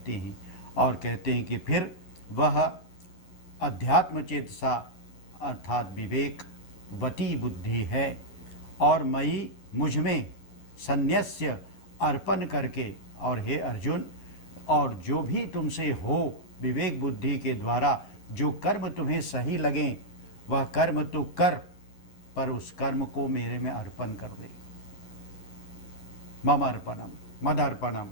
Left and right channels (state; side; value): late; right; 11 ms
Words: हैं। और कहते हैं कि फिर वह अध्यात्म चेतसा अर्थात विवेकवती बुद्धि है। और मई, मुझ में, संन्यस्य, अर्पण करके, और हे अर्जुन, और जो भी तुमसे हो विवेक बुद्धि के द्वारा जो कर्म तुम्हें सही लगे वह कर्म तो कर, पर उस कर्म को मेरे में अर्पण कर दे। मम अर्पणम, मदर्पणम,